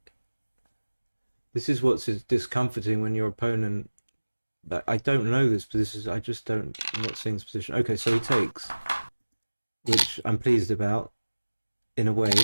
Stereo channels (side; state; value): both; inverted; correlation -1.00